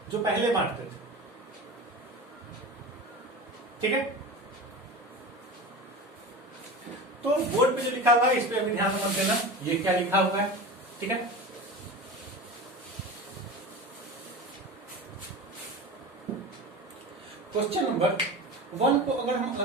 जो पहले बांटते थे। ठीक है, तो बोर्ड पे जो लिखा हुआ है इस पे अभी ध्यान मत देना, ये क्या लिखा हुआ है। ठीक है, क्वेश्चन नंबर 1 को अगर हम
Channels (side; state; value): both; normal; correlation 0.30